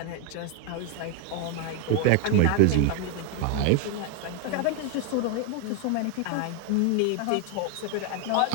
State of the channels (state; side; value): different; both; correlation 0.01